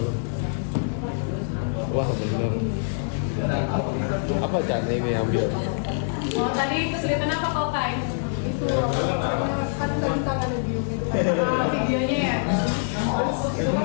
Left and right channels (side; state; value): right; silent; digital silence